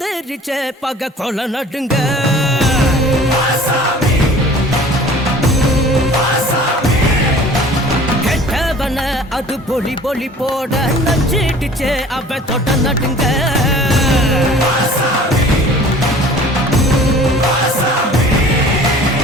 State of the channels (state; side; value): normal; both; correlation 0.47